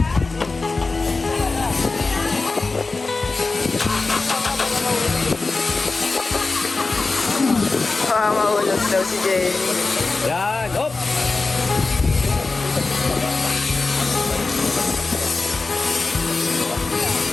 Baka mahulog daw si Jenny. Yan, hop!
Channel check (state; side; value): quieter; right; 3.7 dB